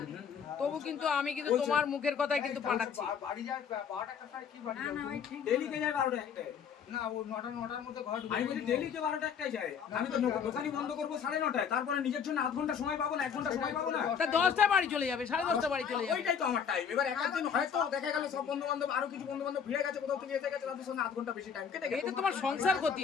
তবু কিন্তু আমি কিন্তু তোমার মুখের কথাই কিন্তু পাঠাচ্ছি। বাড়ি যায় 12টা কোথায় কি বাড়ি যাবে? ডেলি কে যায় 12টা একটায়? না, ও 9টার মধ্যে ঘর ঢুকে আমি বলি ডেলি কে 12টা একটাই যায়? আমি তো দোকানই বন্ধ করবো 9:30, তারপরে নিজের জন্য আধ ঘন্টা সময় পাবো না, 1 ঘন্টা সময় পাবো না। তা 10টায় বাড়ি চলে যাবে, 10:30 বাড়ি চলে যাবে। ওইটাই তো আমার টাইম। এবার একদিন হয়তো দেখা গেল সব বন্ধু বান্ধব, আরো কিছু বন্ধু বান্ধব ভিড়ে গেছে, কোথাও থেকে এসে গেছে, তাদের সঙ্গে আধ ঘন্টা বেশি টাইম কেটে গেছে। এটা তোমার সংসার ক্ষতি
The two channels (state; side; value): quieter; right; 7.1 dB